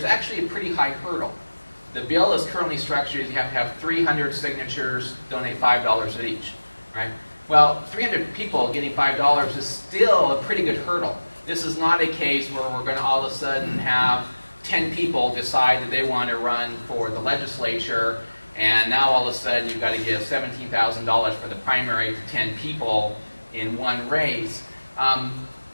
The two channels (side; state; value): both; inverted; correlation -1.00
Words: actually a pretty high hurdle. The bill is currently structured as you have to have 300 signatures, donate $5 each, right? Well, 300 people getting $5 is still a pretty good hurdle. This is not a case where we're going to all of a sudden have 10 people decide that they want to run for the legislature, and now all of a sudden you've got to give $17,000 for the primary to 10 people in one race.